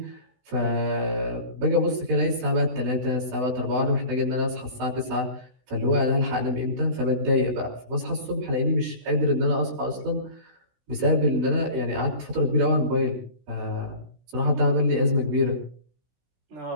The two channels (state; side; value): late; left; 16 ms